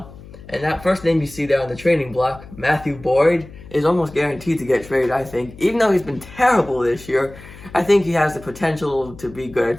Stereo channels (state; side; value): noise; left; hum, 18 dB below the sound